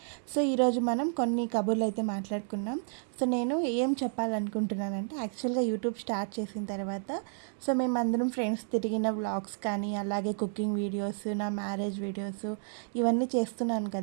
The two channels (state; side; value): silent; left; digital silence